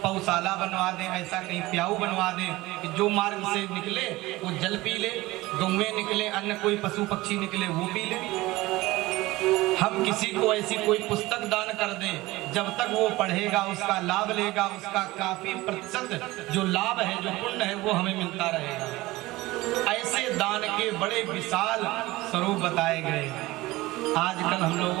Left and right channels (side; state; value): left; quieter; 19.3 dB